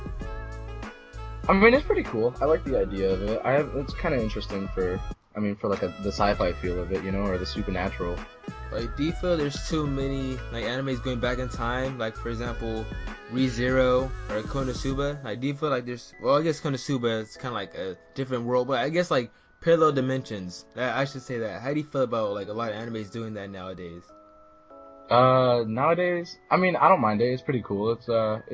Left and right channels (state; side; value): identical; both; correlation 1.00